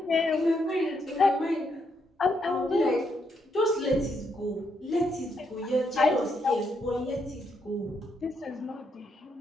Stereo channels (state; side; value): normal; both; correlation 0.77